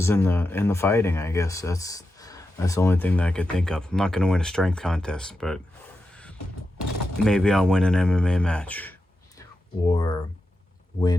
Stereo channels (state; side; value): normal; both; correlation 0.89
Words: in the fighting. I guess that's the only thing that I could think of. I'm not gonna win a strength contest, but maybe I'll win an MMA match or